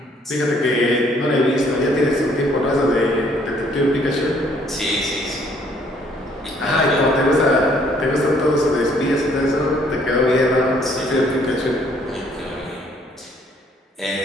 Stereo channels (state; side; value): normal; both; correlation 0.63